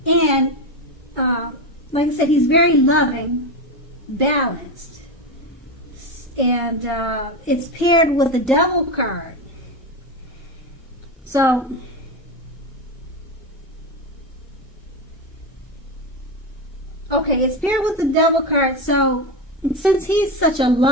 And like I said, he's very loving, balanced. And it's paired with the Devil card. So, okay, it's paired with the Devil card. So, since he's such a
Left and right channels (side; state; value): both; normal; correlation 0.16